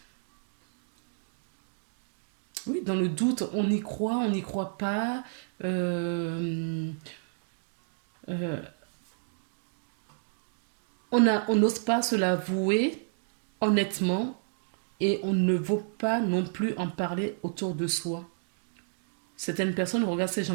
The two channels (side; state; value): left; silent; digital silence